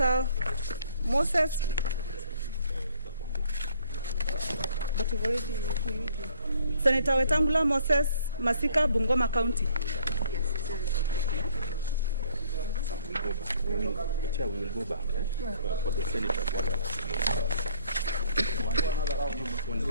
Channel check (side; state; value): both; inverted; correlation -0.59